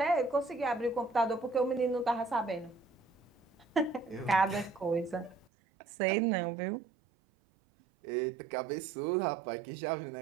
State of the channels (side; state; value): left; drops out; at 5.5 s